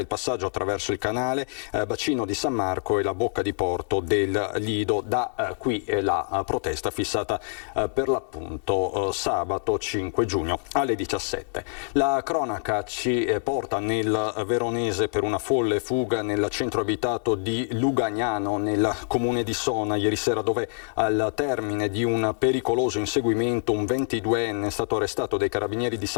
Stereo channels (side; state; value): right; silent; 60 dB below the other